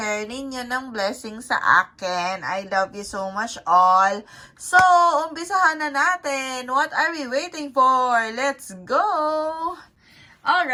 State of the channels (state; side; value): identical; both; correlation 1.00